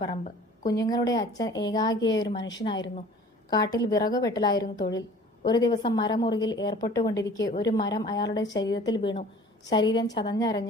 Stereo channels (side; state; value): both; normal; correlation 0.48